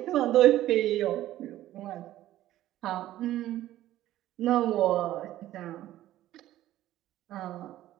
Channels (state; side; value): quieter; left; 14.1 dB